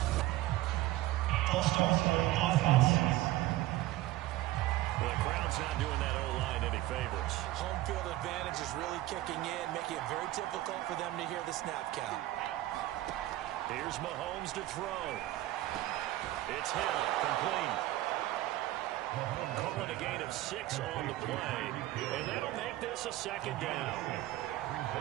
False start for offense. Well, the crowd's not doing that O-line any favors. Home field advantage is really kicking in, making it very difficult for them to hear the snap count. Here's Mahomes to throw. It's Hill, complete. Calling a gain of 6 on the play, and that'll make this a 2nd down.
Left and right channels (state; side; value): quieter; left; 16.1 dB